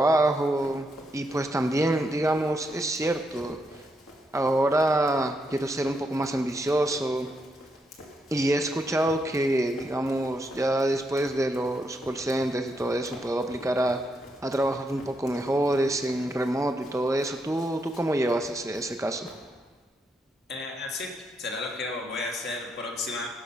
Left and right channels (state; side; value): normal; both; correlation 0.79